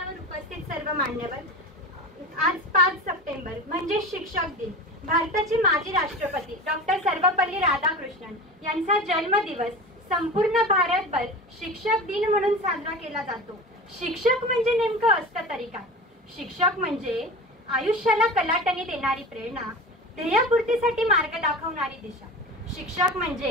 उपस्थित सर्व मान्यवर, आज 5 सप्टेंबर म्हणजे शिक्षक दिन. भारताचे माजी राष्ट्रपती डॉक्टर सर्वपल्ली राधाकृष्णन यांचा जन्मदिवस संपूर्ण भारतभर शिक्षक दिन म्हणून साजरा केला जातो. शिक्षक म्हणजे नेमकं असतं तरी काय? शिक्षक म्हणजे आयुष्याला कलाटणी देणारी प्रेरणा, ध्येयपूर्तीसाठी मार्ग दाखवणारी दिशा. शिक्षक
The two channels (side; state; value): both; normal; correlation 0.32